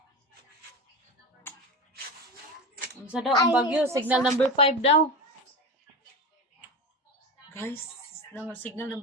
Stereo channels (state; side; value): normal; both; correlation 0.25